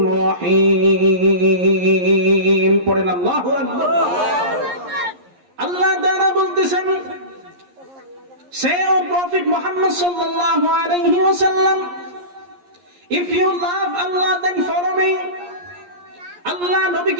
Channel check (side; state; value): left; late; 11 ms